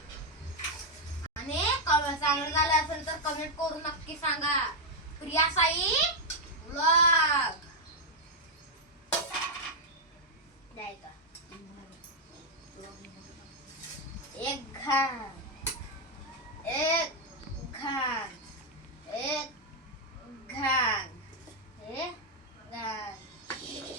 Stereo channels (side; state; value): both; normal; correlation -0.01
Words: आणि चांगलं झालं असेल तर कमेंट करून नक्की सांगा. प्रिया साई व्लॉग द्यायचा. एक घाण एक घाण एक घाण एक घाण.